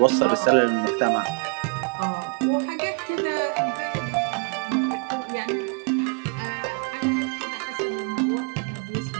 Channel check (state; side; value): quieter; left; 36.5 dB